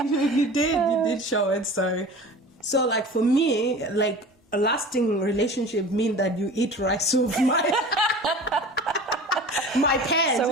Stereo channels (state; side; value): normal; both; correlation 0.39